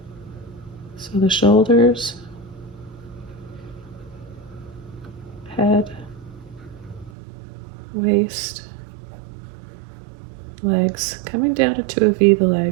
So the shoulders, head, waist, legs, coming down into a V, the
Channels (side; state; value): left; drops out; at 7.1 s